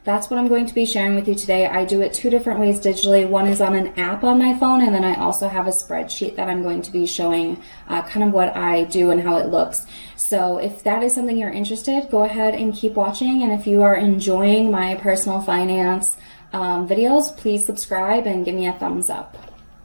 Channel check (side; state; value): both; inverted; correlation -1.00